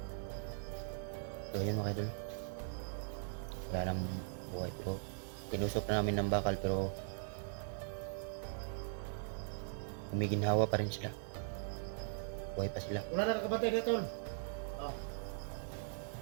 So yan mga idol. Wala nang buhay pero tinusok na namin ng bakal pero humiginhawa pa rin sila. Buhay pa sila. Wala na nakabantay na tol.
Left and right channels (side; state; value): left; silent; digital silence